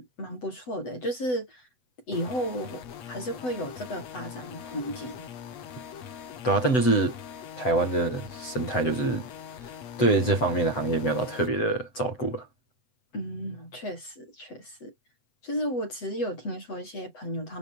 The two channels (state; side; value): late; right; 7.8 ms